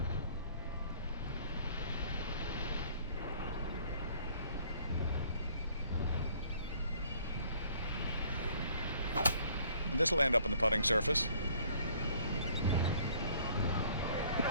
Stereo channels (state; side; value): inverted; both; correlation -0.58